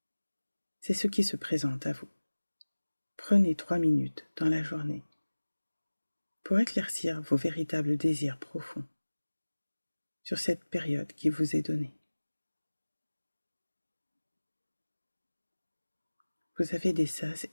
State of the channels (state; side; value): inverted; both; correlation -1.00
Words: C'est ce qui se présente à vous. Prenez 3 minutes dans la journée pour éclaircir vos véritables désirs profonds sur cette période qui vous est donnée. Vous avez des sas